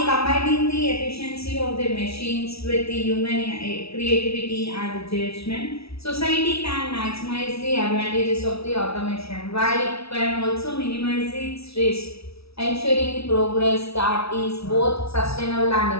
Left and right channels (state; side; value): late; right; 0.77 ms